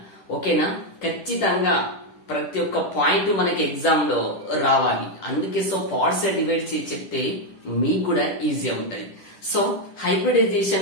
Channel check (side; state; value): right; late; 10 ms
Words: ఓకేనా? ఖచ్చితంగా ప్రతి ఒక్క పాయింట్ మనకి ఎగ్జామ్ లో రావాలి. అందుకే పార్ట్స్ డివైడ్ చేసి చెప్తే మీకు కూడా ఈజీగా ఉంటది. సో